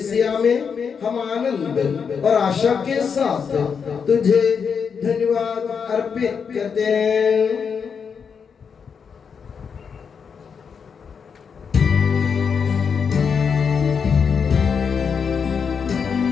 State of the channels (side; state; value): right; quieter; 6.4 dB